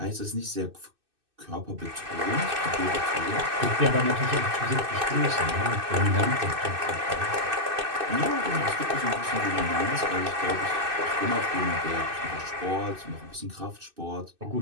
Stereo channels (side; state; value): left; late; 2.6 ms